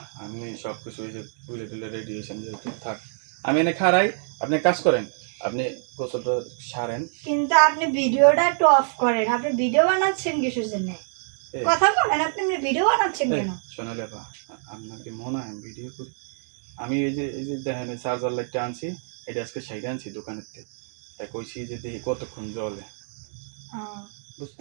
আপনি সবকিছু ওই যে তুলে তুলে রেডি হয়েছেন যেহেতু থাক, আমি এনে খাড়াই, আপনি কাজ করেন, আপনি গোসলটা সারেন। কিন্তু আপনি ভিডিওটা একটু অফ করেন, আপনি ভিডিও বানাচ্ছেন কিসের জন্য? কথা বলেন, আপনি ভিডিও বানাচ্ছেন কেন? সোনালি আপা আপনাকে মনে হয় ভিডিও করি? আমি এই যে দেখেন চার্জার লাইটটা আনছি, এটা আজকে সাইডে আনছি দোকানের থেকে, তাই কইছি যে দেখি কতক্ষণ জ্বলে,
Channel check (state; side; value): silent; left; 61 dB below the other